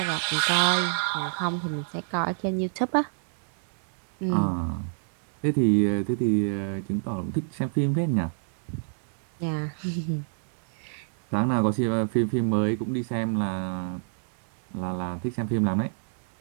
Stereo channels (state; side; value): silent; left; digital silence